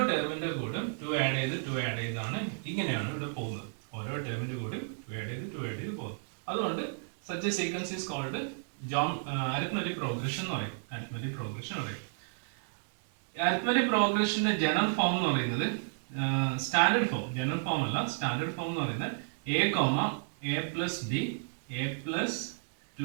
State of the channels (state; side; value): silent; left; digital silence